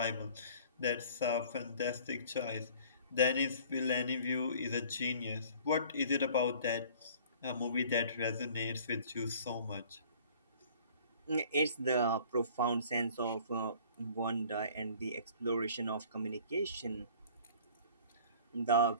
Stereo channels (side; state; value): both; inverted; correlation -0.50